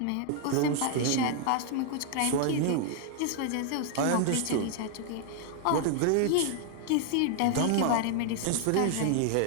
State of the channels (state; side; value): different; both; correlation 0.00